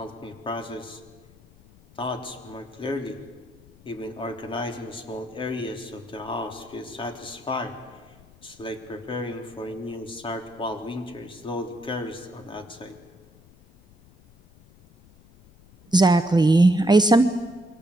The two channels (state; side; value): noise; left; rumble, 26 dB below the sound